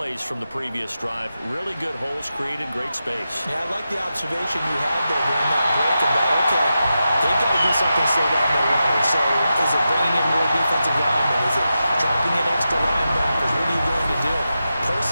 from the previous drive. Really good holes created, great space. Yeah, I like the observation you had there during that break about, okay, they've got to do something to slow down their runners. So is it bringing in more defensive linemen? Is it dropping in extra linebackers? What are you going to do?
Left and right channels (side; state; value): both; inverted; correlation -0.90